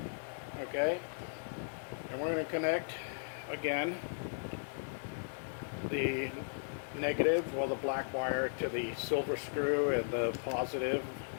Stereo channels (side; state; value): right; silent; digital silence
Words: Okay, and we're going to connect again the negative, well, the black wire to the silver screw and the positive